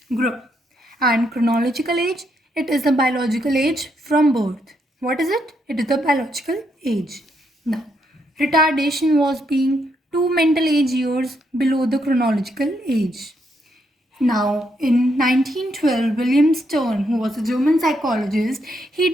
group. And chronological age, it is the biological age from birth. What is it? It is the biological age. Now, retardation was being 2 mental age years below the chronological age. Now, in 1912, William Stern, who was a German psychologist, he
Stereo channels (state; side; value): normal; both; correlation 0.77